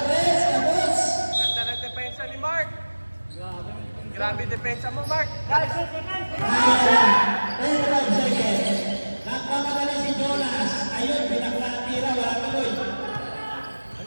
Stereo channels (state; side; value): inverted; both; correlation -1.00